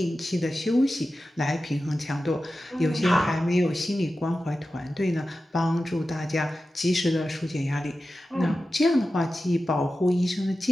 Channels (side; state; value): both; normal; correlation 0.93